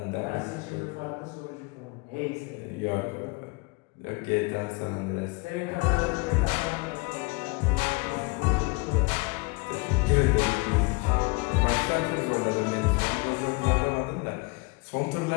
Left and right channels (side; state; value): right; quieter; 27.7 dB